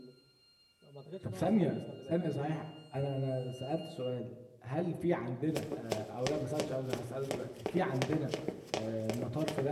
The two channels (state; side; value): identical; both; correlation 1.00